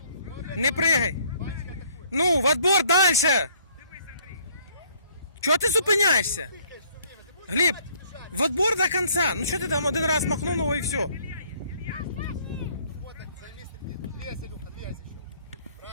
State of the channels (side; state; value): both; inverted; correlation -0.62